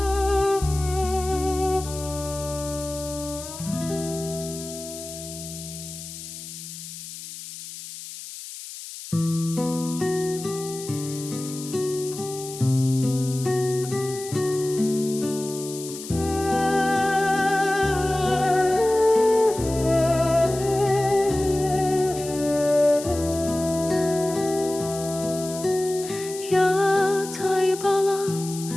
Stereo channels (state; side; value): noise; left; hiss, 12 dB below the sound